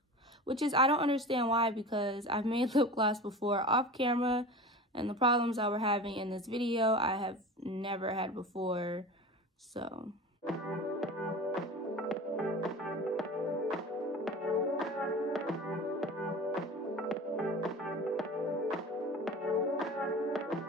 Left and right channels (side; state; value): both; normal; correlation 0.34